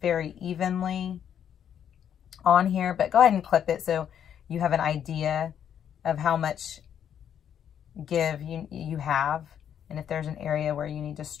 evenly on here, but go ahead and clip it so you have an idea of how much give you have, and if there's an area where you need to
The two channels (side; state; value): right; quieter; 9.1 dB